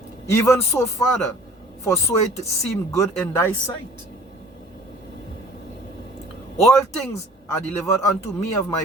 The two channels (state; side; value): normal; both; correlation 0.49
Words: Even so, Father, for so it seemed good in thy sight. All things are delivered unto me of